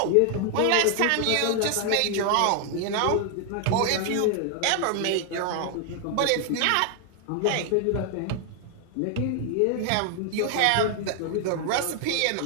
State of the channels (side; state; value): both; different; correlation 0.00